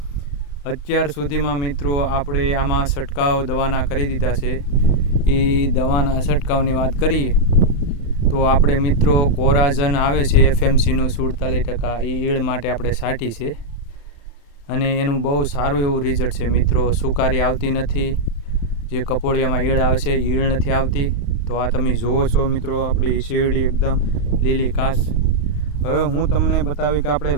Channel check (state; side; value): late; right; 35 ms